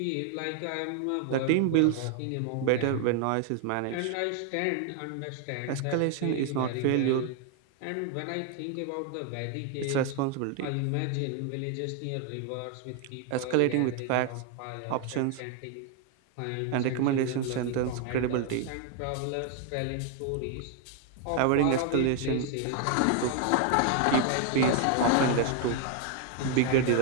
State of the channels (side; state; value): both; different; correlation 0.00